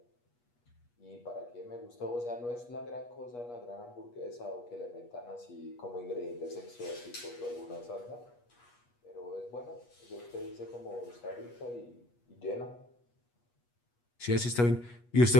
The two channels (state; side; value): late; right; 8.3 ms